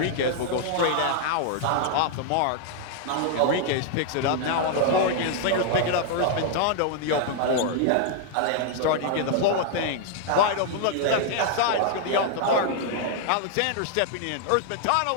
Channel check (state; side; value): different; both; correlation 0.00